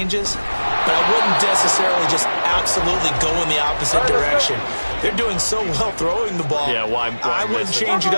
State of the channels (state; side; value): inverted; both; correlation -1.00